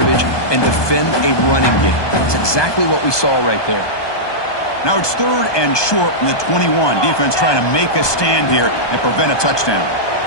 and defend a running game. That's exactly what we saw right there. Now it's 3rd and short from the 21. Defense trying to make a stand here and prevent a touchdown.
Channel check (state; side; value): late; right; 1.2 ms